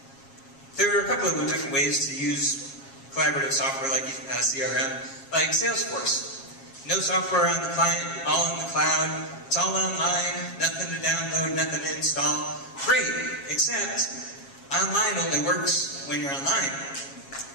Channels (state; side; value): late; right; 7.3 ms